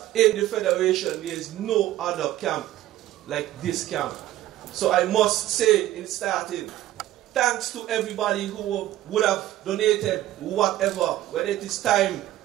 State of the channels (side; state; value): left; quieter; 14.3 dB